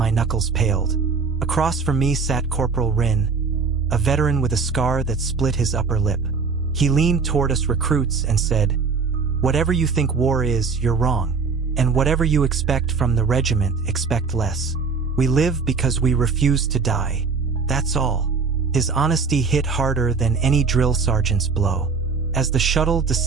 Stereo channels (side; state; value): left; quieter; 5.0 dB